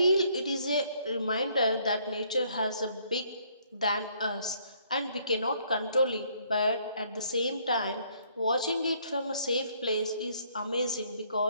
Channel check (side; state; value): both; inverted; correlation -0.66